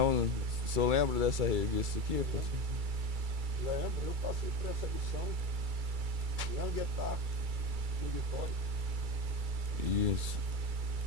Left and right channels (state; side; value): late; left; 2.3 ms